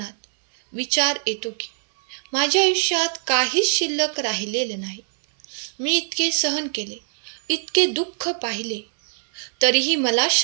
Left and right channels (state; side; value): silent; left; 63 dB below the other